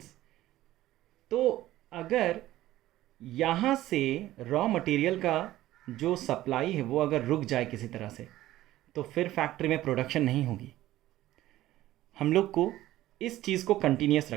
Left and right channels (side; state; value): left; quieter; 15.1 dB